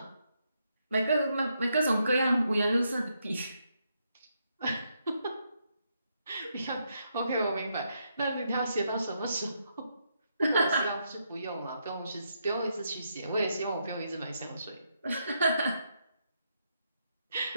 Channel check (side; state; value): both; inverted; correlation -0.79